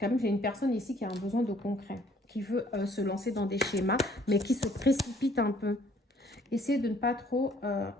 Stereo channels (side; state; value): both; normal; correlation 0.60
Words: même, j'ai une personne ici qui a un besoin de concret, qui veut se lancer dans des schémas, mais qui se précipite un peu. Essayez de ne pas trop